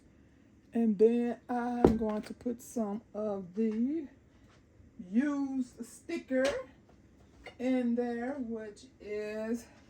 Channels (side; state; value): both; identical; correlation 1.00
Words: And then I'm going to put some of the used sticker in there, which is